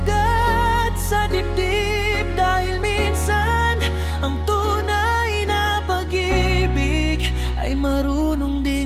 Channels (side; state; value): both; identical; correlation 1.00